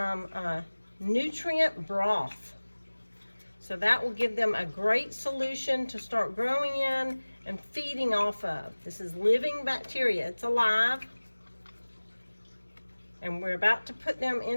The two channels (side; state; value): both; inverted; correlation -1.00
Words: nutrient broth. So that will give them a great solution to start growing in and feeding off of. This is living bacteria. It's alive. And we're about to put them